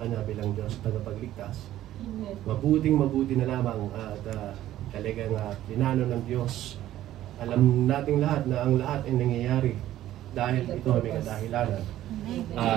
bilang Diyos tagapagligtas. Mabuting-mabuti na lamang at talagang pinano ng Diyos. Alam nating lahat na ang lahat ay nangyayari dahil ito ay may kadahilanan.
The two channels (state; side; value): quieter; left; 13.4 dB